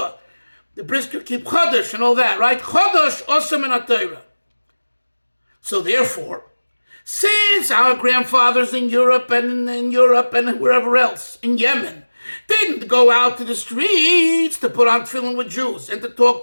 The brisker keep Chodesh and all that, right? Chodesh osem min haTorah. So therefore, since our grandfathers in Europe and wherever else, in Yemen, didn't go out to the streets to put on tefillin with Jews and to talk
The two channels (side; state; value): both; inverted; correlation -1.00